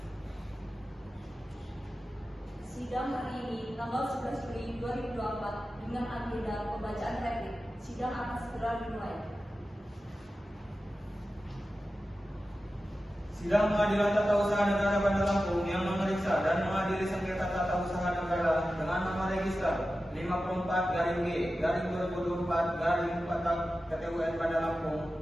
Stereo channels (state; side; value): normal; both; correlation 0.93